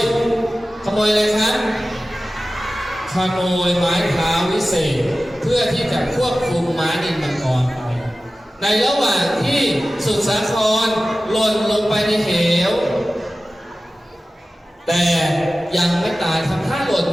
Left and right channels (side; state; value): both; normal; correlation 0.95